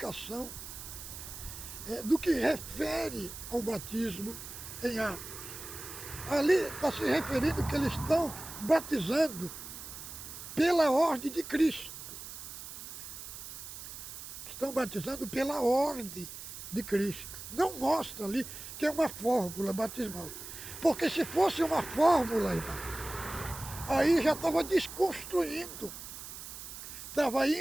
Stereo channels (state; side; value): noise; right; hiss, 11 dB below the sound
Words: do que refere ao batismo em Atos. Ali está se referindo que eles estão batizando pela ordem de Cristo. Estão batizando pela ordem de Cristo. Não mostra ali que é uma fórmula batismal. Porque se fosse uma fórmula, irmão, aí já estava desconstruindo. Estava